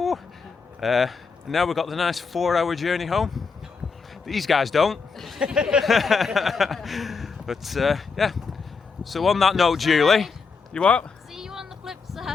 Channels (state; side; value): quieter; right; 5.0 dB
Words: Now we've got the nice 4-hour journey home. These guys don't. But yeah. So on that note, Julie, you what? See you on the flip